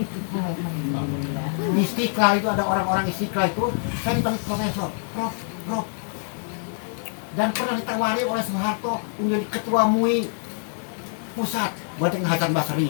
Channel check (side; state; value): right; silent; digital silence